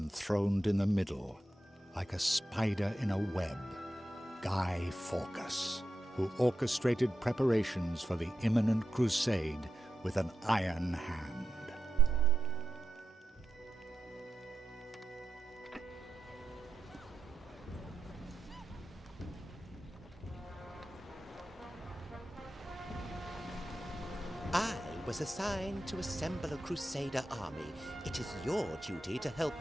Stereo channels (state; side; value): normal; both; correlation 0.88